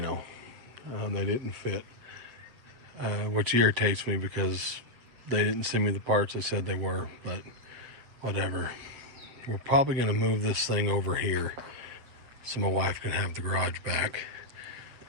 They didn't fit, which irritates me because they didn't send me the parts they said they were, but whatever. We're probably going to move this thing over here so my wife can have the garage back.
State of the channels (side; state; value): left; late; 7.7 ms